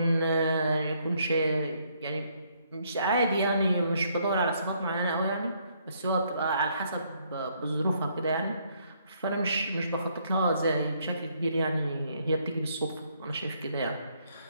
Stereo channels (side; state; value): both; inverted; correlation -0.70